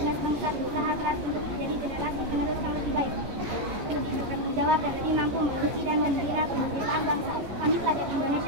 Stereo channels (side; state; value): left; late; 14 ms